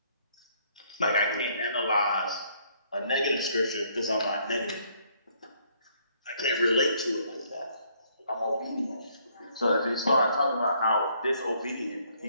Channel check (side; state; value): both; inverted; correlation -0.66